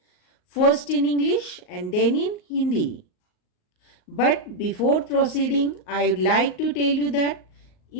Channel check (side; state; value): right; late; 38 ms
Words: first in English and then in Hindi. But before proceeding, I would like to tell you that